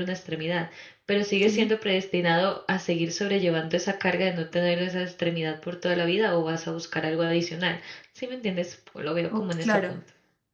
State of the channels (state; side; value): identical; both; correlation 1.00